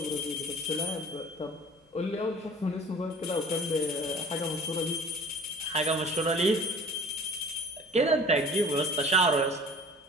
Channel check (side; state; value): both; normal; correlation 0.46